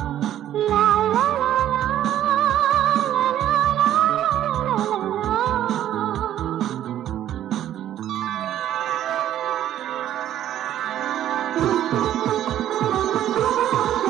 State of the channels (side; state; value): left; quieter; 11.7 dB